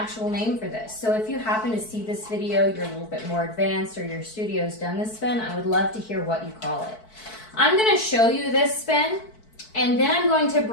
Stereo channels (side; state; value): right; late; 4.6 ms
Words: name for this, so if you happen to see this video, you're a little bit more advanced or your studio's done this spin, I would love to hear what you call it. I'm going to show you this spin and then I'm going to